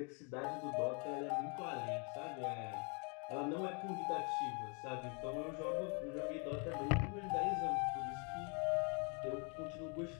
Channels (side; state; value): right; quieter; 36.1 dB